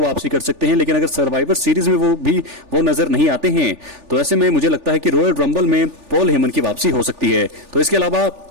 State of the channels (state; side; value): late; left; 3.4 ms